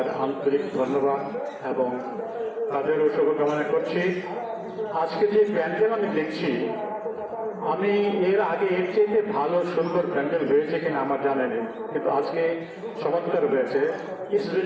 আন্তরিক ধন্যবাদ এবং তাদেরও শুভকামনা করছি। আজকে যে প্যান্ডেল আমি দেখছি, আমি এর আগে এর চেয়ে ভালো সুন্দর প্যান্ডেল হয়েছে কিনা আমার জানা নেই, কিন্তু আজকে চমৎকার হয়েছে। It's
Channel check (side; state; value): both; identical; correlation 1.00